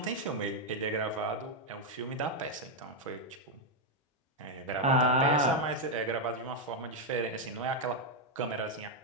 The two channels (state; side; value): normal; both; correlation 0.01